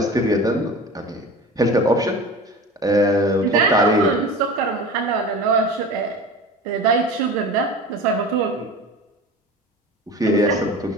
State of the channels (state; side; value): normal; both; correlation 0.35